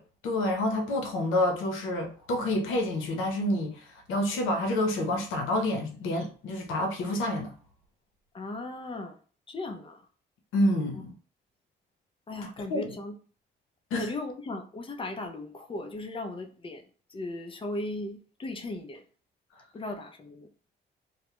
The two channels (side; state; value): both; normal; correlation 0.45